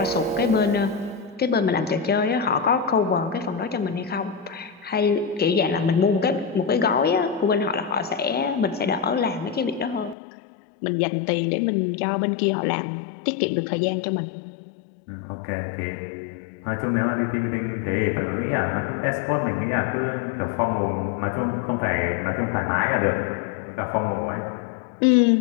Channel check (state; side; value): drops out; right; at 10.2 s